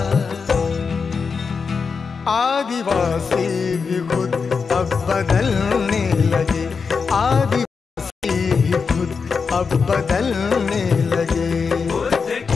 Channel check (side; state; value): right; quieter; 5.3 dB